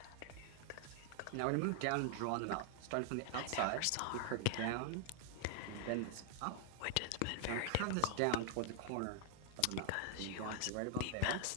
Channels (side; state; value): both; different; correlation 0.00